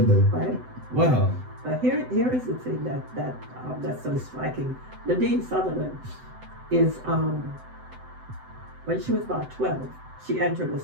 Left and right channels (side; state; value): left; late; 7.9 ms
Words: day. Right. Wow. But here is the thing that's so striking. Nadine Sullivan is when she was about 12, she entered a